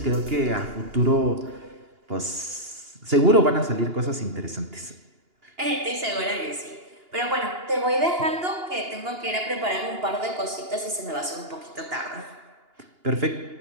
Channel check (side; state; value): left; late; 2.8 ms